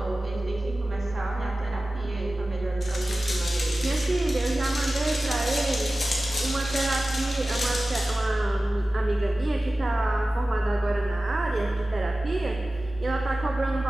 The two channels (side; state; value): both; normal; correlation 0.96